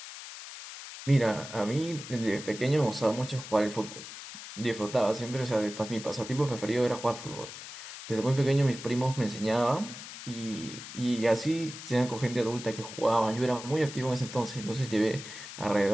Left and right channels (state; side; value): noise; left; hiss, 12 dB below the sound